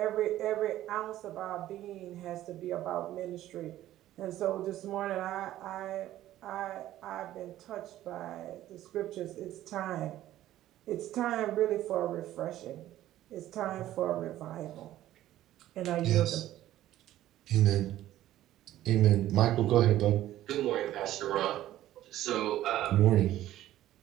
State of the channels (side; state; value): left; quieter; 13.8 dB